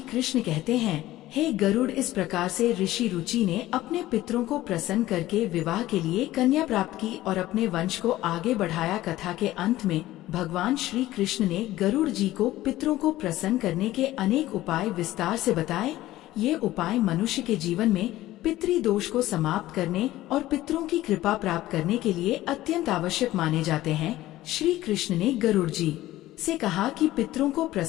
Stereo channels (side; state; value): right; quieter; 15.7 dB